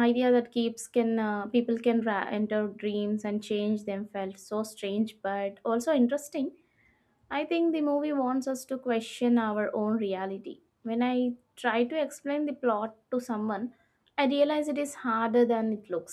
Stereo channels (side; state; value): both; identical; correlation 1.00